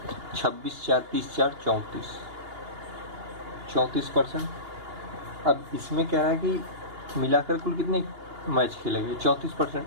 26 4 30 4 34%। अब इसमें कह रहा है कि मिलाकर कुल कितने मैच खेले गए, 34%,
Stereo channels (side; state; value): left; late; 2.8 ms